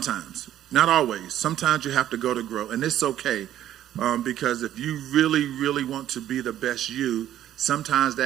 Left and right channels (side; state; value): left; quieter; 11.9 dB